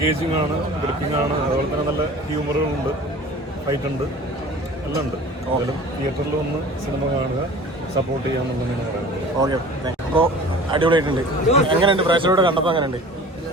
ആണ്, ഗ്രിപ്പിംഗ് ആണ്, അതുപോലെ തന്നെ നല്ല ഹ്യൂമറുകളുണ്ട്, ഫൈറ്റ് ഉണ്ട്, എല്ലാം ഉണ്ട്. എന്തായാലും തിയേറ്ററിൽ വന്ന് സിനിമ കാണുക, സപ്പോർട്ട് ചെയ്യാമെന്നുള്ളതാണ് പറയുന്നത്. ഓക്കെ, അപ്പോൾ അടിപൊളിയായിട്ടുണ്ട്. എങ്ങനെയുണ്ട് പ്രേക്ഷകരോട് കണ്ടപ്പോൾ? എങ്ങനെയുണ്ട്?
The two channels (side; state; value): both; normal; correlation 0.42